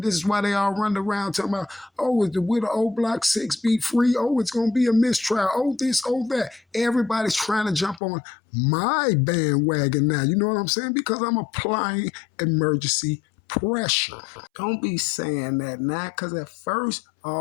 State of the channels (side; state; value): right; drops out; at 8.0 s